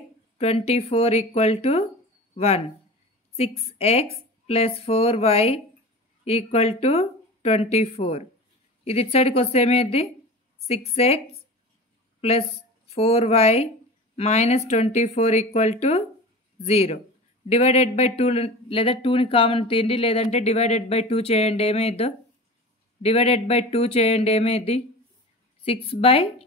24 equal to 1. 6x plus 4y equal to 24. ఇది ఇటు సైడ్కి వస్తే ఏమైంది? 6x plus 4y minus 24 equal to 0. Divided by 2 లేదా 2ని కామన్ తీయండి, లేదంటే డివైడెడ్ బై 2 చేయండి. ఏమైందో? డివైడెడ్ బై 2 చేయండి. ఏమైంది?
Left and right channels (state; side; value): normal; both; correlation 0.33